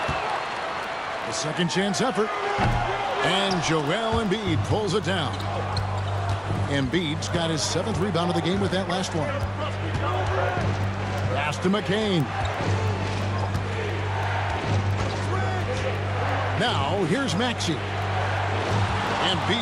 The second chance effort. And Joel Embiid pulls it down. Embiid's got his 7th rebound of the game with that last one. Pass to McCain. Now, here's Maxey.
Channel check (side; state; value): both; identical; correlation 1.00